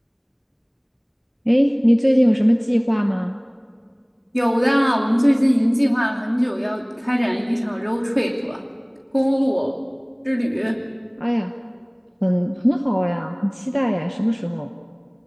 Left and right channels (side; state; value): both; identical; correlation 1.00